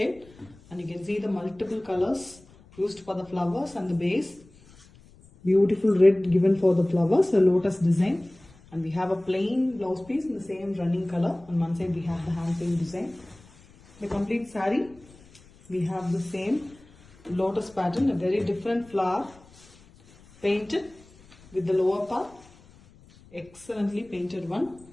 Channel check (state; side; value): noise; left; rumble, 25 dB below the sound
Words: and you can see the multiple colors used for the flowers and the base. Beautiful red given for the flowers, a lotus design, and we have a plain blouse piece in the same running color. On one side we have the hand paint design. The complete saree, we have the same lotus pattern, a very different flower painted with the lower part, excellently painted one.